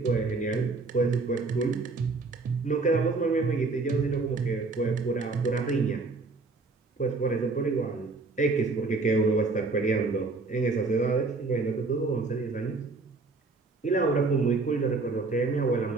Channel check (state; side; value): quieter; left; 3.8 dB